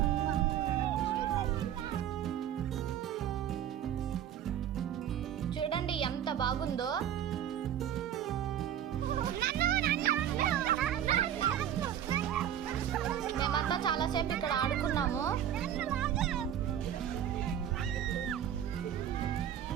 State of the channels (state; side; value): quieter; left; 10.2 dB